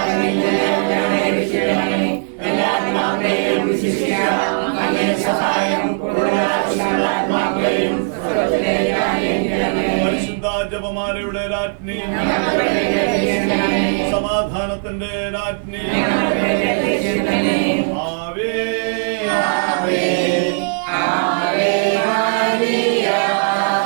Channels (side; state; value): left; silent; digital silence